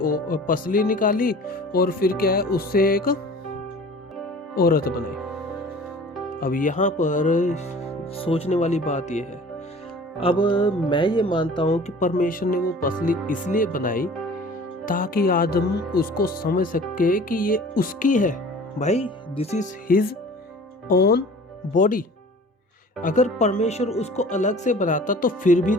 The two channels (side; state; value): both; normal; correlation 0.45